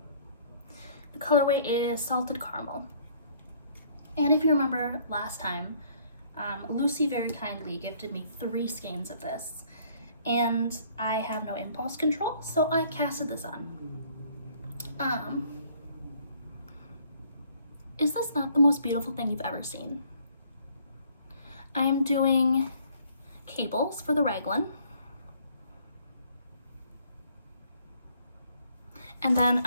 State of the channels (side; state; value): both; inverted; correlation -0.61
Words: The colorway is salted caramel. And if you remember last time, Luxe very kindly gifted me 3 skeins of this, and I have no impulse control, so I casted this on. Is this not the most beautiful thing you've ever seen? I am doing cables for the raglan, and then